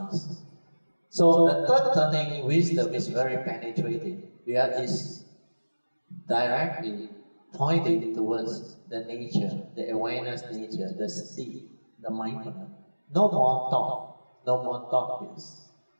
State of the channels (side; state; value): both; inverted; correlation -1.00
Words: So the third turning wisdom is very penetrating. Where it's directly pointing towards the nature, the awareness nature, the sati, the mindfulness. No more thought based.